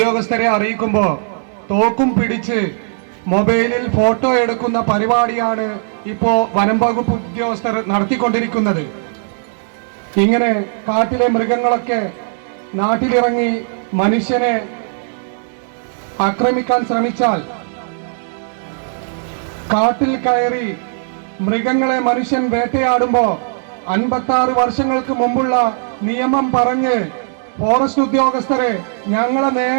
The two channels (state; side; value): silent; left; 68 dB below the other